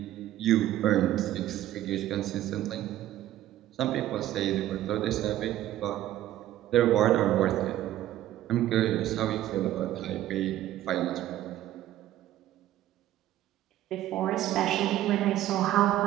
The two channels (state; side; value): quieter; left; 13.5 dB